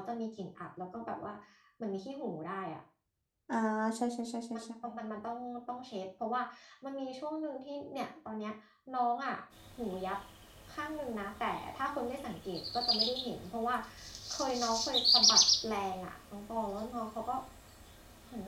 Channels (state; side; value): identical; both; correlation 1.00